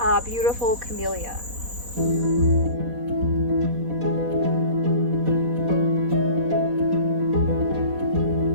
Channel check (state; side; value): late; left; 4.1 ms